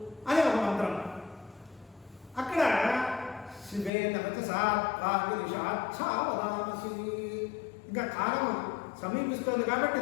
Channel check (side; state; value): right; drops out; at 3.9 s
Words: అనే ఒక మంత్రం. అక్కడ శివే నగత సాత్పాగిరిషాచ్ఛావదాంసి, ఇంకా కాలం సమీపిస్తుంది కాబట్టి